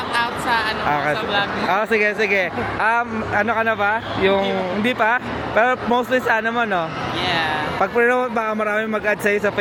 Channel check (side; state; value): both; identical; correlation 1.00